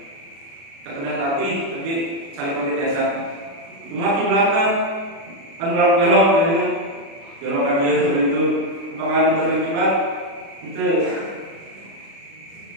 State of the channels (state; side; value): late; left; 36 ms